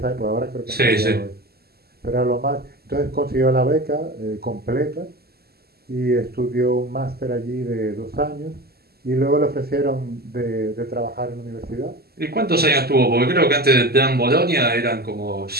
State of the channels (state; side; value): late; left; 0.46 ms